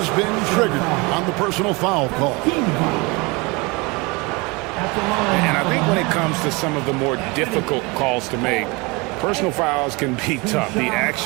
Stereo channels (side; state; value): left; quieter; 26.7 dB